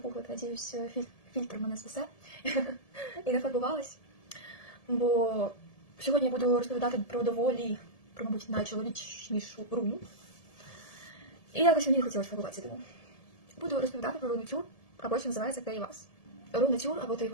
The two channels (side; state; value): right; late; 1.7 ms